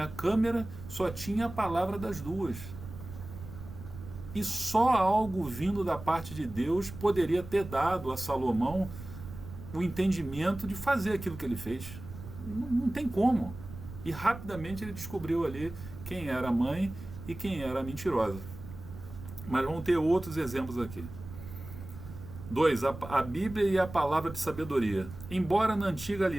câmera, só tinha a palavra das duas. E só algo vindo da parte de Deus poderia ter dado a Salomão o entendimento de fazer aquilo que ele fez. Não tem como. E rapidamente ele descobriu ali quem era a mãe e quem era a mentirosa. Mas vamos ter outros exemplos aqui. 2. A Bíblia e a palavra de sabedoria. Embora na antiga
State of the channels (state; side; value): noise; right; rumble, 13 dB below the sound